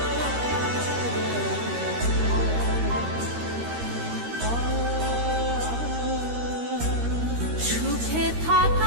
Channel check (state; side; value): late; left; 13 ms